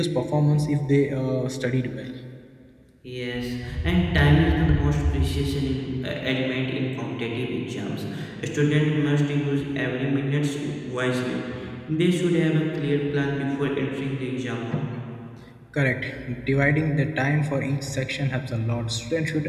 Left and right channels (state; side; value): identical; both; correlation 1.00